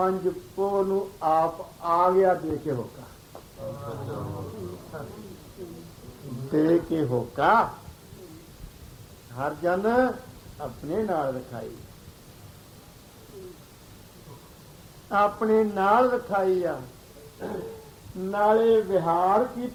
ਪੋਹ ਨੂੰ ਆਪ ਆ ਗਿਆ ਦੇ ਕੇ ਹੋਕਾ, ਦੇ ਕੇ ਹੋਕਾ ਹਰ ਜਨ ਆਪਣੇ ਨਾਲ ਰਖਾਈ, ਆਪਣੇ ਨਾਲ ਰਖਾਈ ਆ। ਨਾਲੇ ਵਿਹਾਰ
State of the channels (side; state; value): both; identical; correlation 1.00